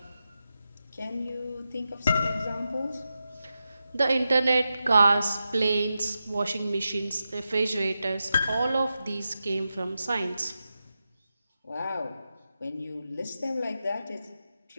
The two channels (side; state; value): both; inverted; correlation -0.90